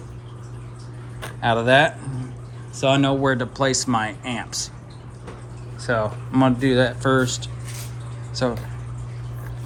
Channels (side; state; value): both; identical; correlation 1.00